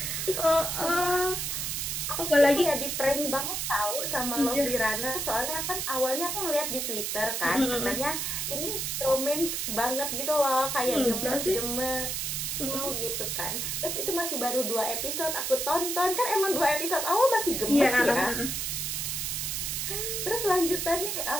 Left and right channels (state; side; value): noise; right; hiss, 2 dB below the sound